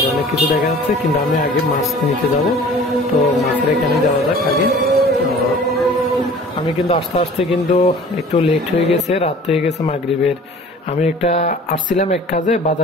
অনেক কিছু দেখা যাচ্ছে, কিন্তু আমি আগে মাছ নিতে যাব। তো মাছের এখানে যাওয়া যাক আগে। তো আমি কিন্তু আস্তে আস্তে কিন্তু একটু লেট হয়ে গেছে, রাত হয়ে গেছে মাগরিবের। আমি একটা আসছিলাম এক কাজে,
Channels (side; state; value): both; normal; correlation 0.46